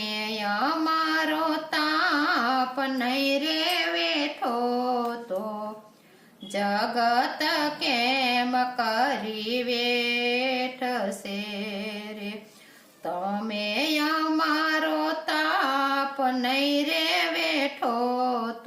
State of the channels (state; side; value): identical; both; correlation 1.00